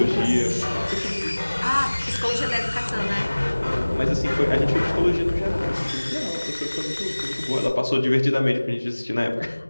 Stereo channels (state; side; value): inverted; both; correlation -1.00